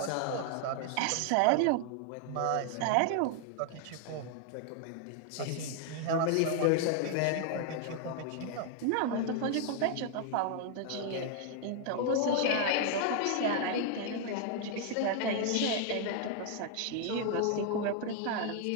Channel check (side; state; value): both; different; correlation 0.00